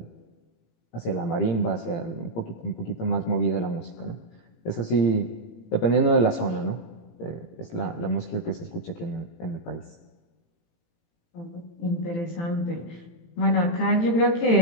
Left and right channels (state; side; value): late; right; 18 ms